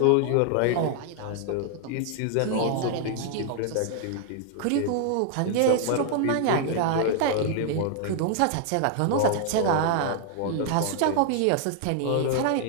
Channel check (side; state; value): both; different; correlation 0.00